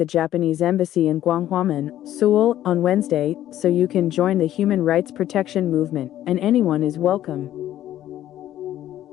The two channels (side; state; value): right; quieter; 12.6 dB